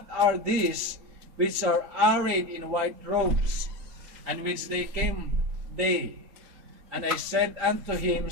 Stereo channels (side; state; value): left; late; 3.8 ms